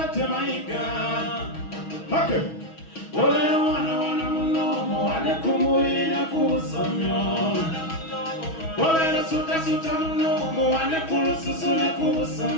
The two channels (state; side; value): late; right; 6.2 ms